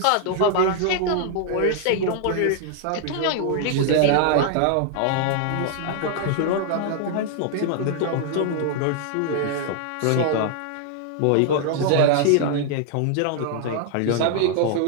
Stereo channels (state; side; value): different; both; correlation 0.00